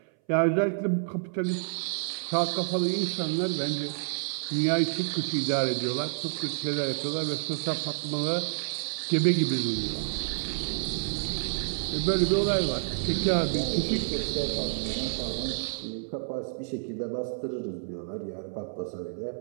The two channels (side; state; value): left; silent; 59 dB below the other